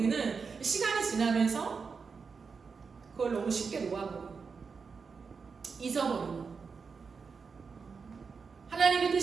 시간이 지나면서 그걸 너무 쉽게 놓아버리고 잊어버리고, 하나님의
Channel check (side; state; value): left; quieter; 5.3 dB